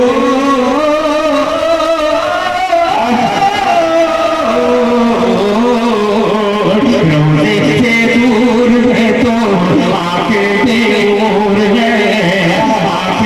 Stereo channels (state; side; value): identical; both; correlation 1.00